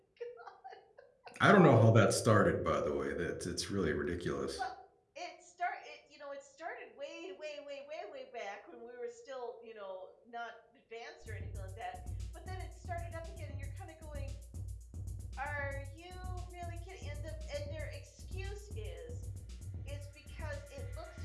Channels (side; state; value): both; identical; correlation 1.00